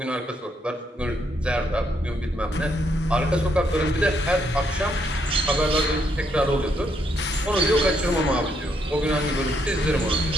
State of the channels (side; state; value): both; normal; correlation 0.74